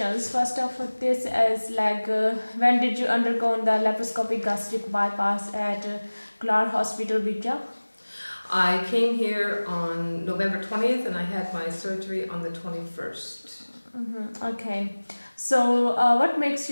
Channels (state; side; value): inverted; both; correlation -1.00